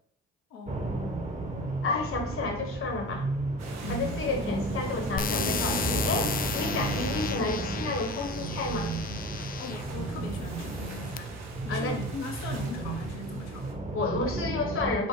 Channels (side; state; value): both; normal; correlation 0.33